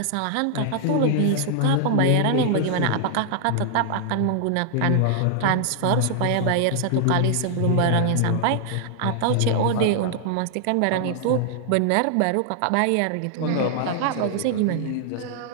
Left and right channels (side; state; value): both; different; correlation -0.01